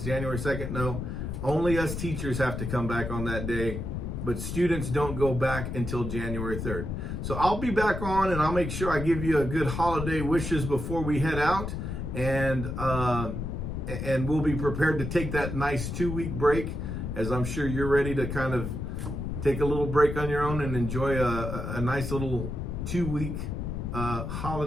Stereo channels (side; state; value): left; noise; rumble, 4 dB below the sound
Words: January 2nd. No, only us teachers have to come back on that day, but students don't go back until January 3rd. So I'll be back on, and I'll make sure I give you a good holiday wishes before we head out, and we'll be prepared to take that nice 2-week break, as I'm sure you're ready to kind of take a little break on your own and enjoy a nice little 2-week